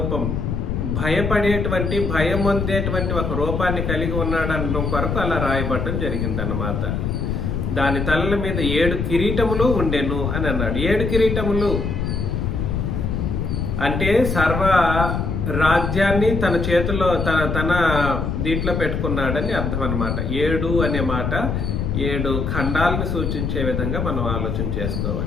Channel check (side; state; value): left; noise; rumble, 1 dB below the sound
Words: భయపడేటువంటి, భయం పొందేటువంటి ఒక రూపాన్ని కలిగి ఉన్నాడు అనడం కొరకు అలా రాయబడటం జరిగిందన్నమాట. దాని తలల మీద 7 కిరీటములు ఉండెను అని అన్నాడు. 7 కిరీటములు అంటే సర్వ రాజ్యాన్ని తన చేతిలో తన దీంట్లో పెట్టుకున్నాడని అర్థం అన్నమాట. 7 అనే మాట 7 ఖండాలను సూచించే విధంగా మనం ఆలోచన